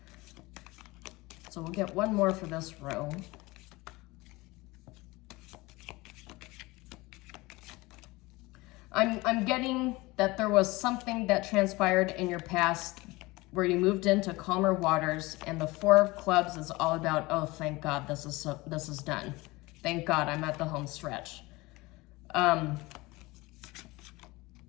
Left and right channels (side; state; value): right; quieter; 21.9 dB